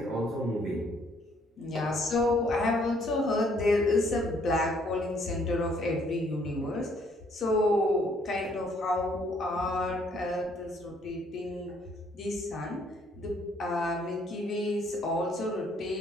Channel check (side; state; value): both; normal; correlation 0.66